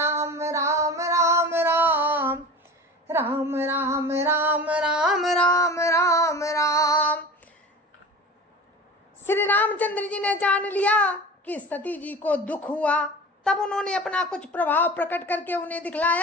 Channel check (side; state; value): both; normal; correlation 0.35